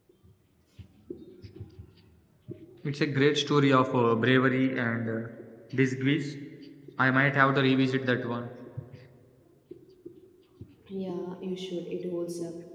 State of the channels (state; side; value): identical; both; correlation 1.00